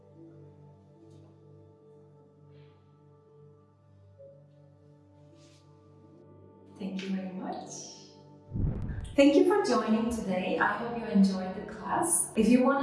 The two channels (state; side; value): identical; both; correlation 1.00